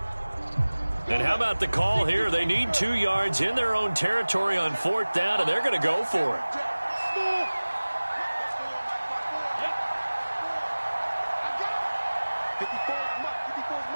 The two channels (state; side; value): inverted; both; correlation -1.00